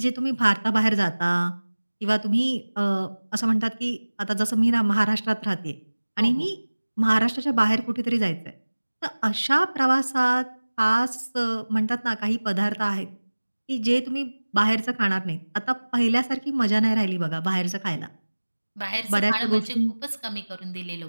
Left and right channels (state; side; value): inverted; both; correlation -1.00